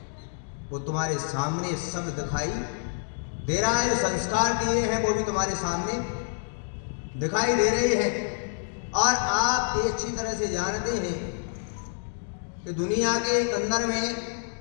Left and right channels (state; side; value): silent; right; 60 dB below the other